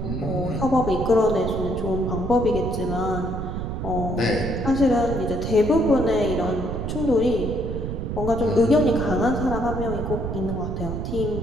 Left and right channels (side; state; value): right; noise; rumble, 4 dB below the sound